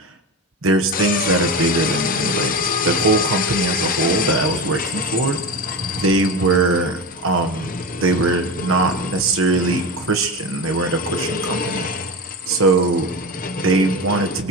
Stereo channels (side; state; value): both; normal; correlation 0.23